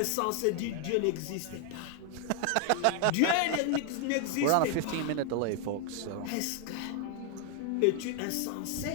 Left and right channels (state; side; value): different; both; correlation 0.00